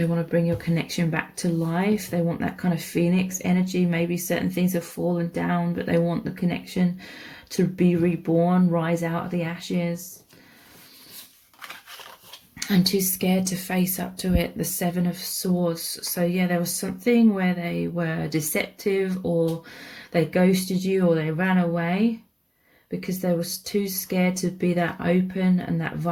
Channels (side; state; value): both; identical; correlation 1.00